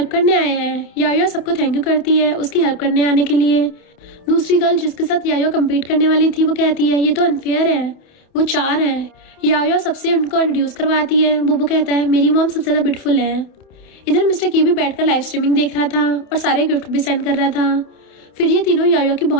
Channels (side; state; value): right; late; 28 ms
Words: करने आए हैं। याओ सबको थैंक यू करती है उसकी हेल्प करने आने के लिए। दूसरी गर्ल जिसके साथ याओ कम्पीट करने वाली थी वो कहती है ये तो अनफेयर है, वो 4 है। याओ सबसे उनको इंट्रोड्यूस करवाती है। बोबो कहता है मेरी मॉम सबसे ज्यादा ब्यूटीफुल है। इधर मिस्टर की भी बैठकर लाइव स्ट्रीमिंग देख रहा था और सारे गिफ्ट भी सेंड कर रहा था। फिर ये तीनों याओ की